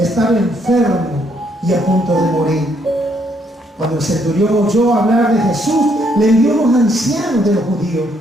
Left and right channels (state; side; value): normal; both; correlation 0.71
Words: enfermo y a punto de morir. Cuando el centurión oyó hablar de Jesús, le envió a los ancianos de los judíos,